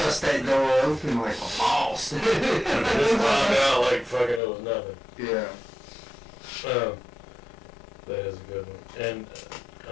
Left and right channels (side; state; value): right; drops out; at 4.4 s